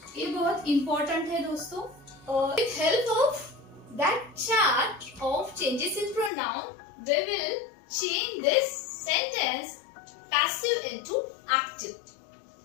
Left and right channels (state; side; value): drops out; right; at 6.3 s